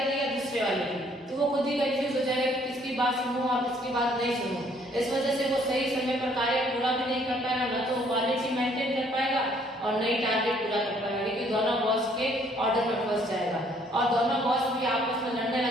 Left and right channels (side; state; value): both; normal; correlation 0.63